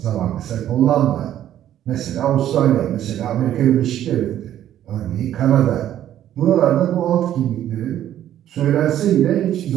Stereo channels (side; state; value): left; quieter; 11.6 dB